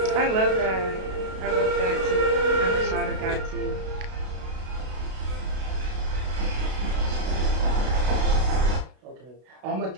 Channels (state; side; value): late; left; 32 ms